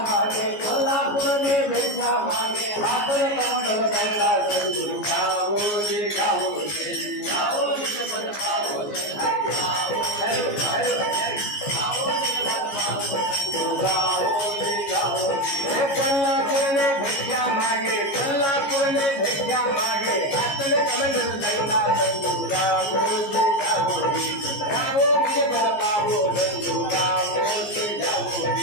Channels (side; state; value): right; late; 14 ms